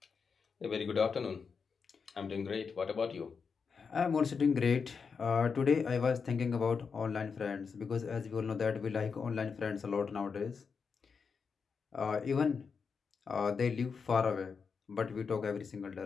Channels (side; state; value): right; quieter; 5.6 dB